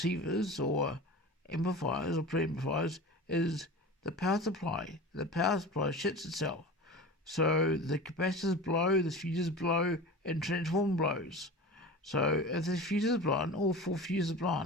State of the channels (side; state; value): both; normal; correlation 0.33